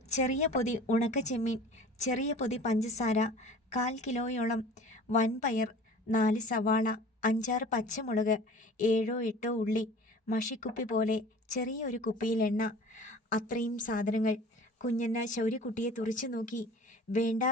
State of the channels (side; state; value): both; normal; correlation 0.43